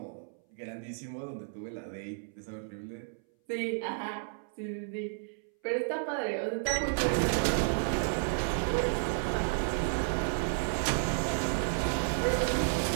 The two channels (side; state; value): left; silent; 56 dB below the other